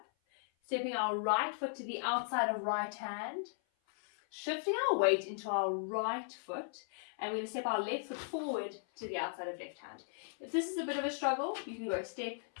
stepping our right foot to the outside of right hand, shifting our weight into our right foot, and we're going to step our left foot forward to the outside of left hand. If this is a bit of a struggle, you can go step,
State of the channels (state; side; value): silent; right; 53 dB below the other